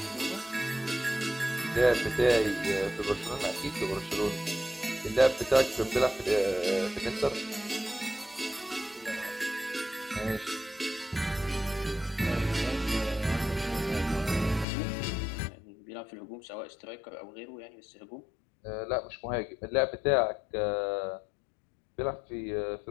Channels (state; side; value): drops out; right; at 14.7 s